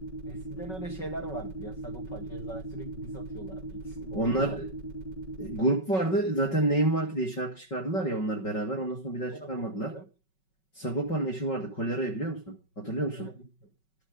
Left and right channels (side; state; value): right; late; 5.4 ms